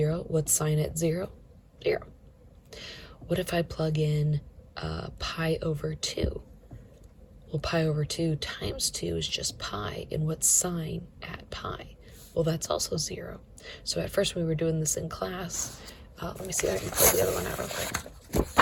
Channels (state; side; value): identical; both; correlation 1.00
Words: What's sine at 0? 0. What if I plug in pi over 2? Well, pi over 2 times 2 is just pi, and what's sine at pi? Well, that's also 0. So at first when we were doing this in class, let me see if I can pull the other one out real quick.